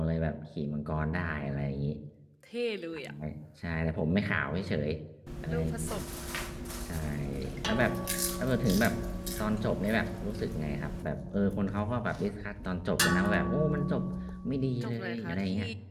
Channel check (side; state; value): both; identical; correlation 1.00